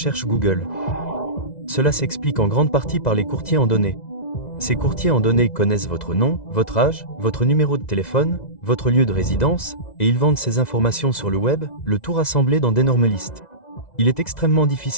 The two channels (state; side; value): late; right; 2.0 ms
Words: Google. Cela s'explique en grande partie par les courtiers en données. Ces courtiers en données connaissent votre nom, votre âge, votre numéro de téléphone, votre lieu de résidence, et ils vendent ces informations sur le web, le tout rassemblé dans d'énormes listes. Il est extrêmement